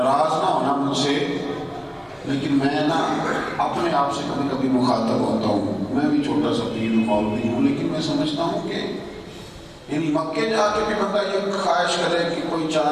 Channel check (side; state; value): both; identical; correlation 1.00